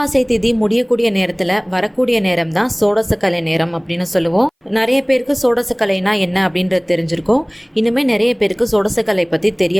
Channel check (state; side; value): identical; both; correlation 1.00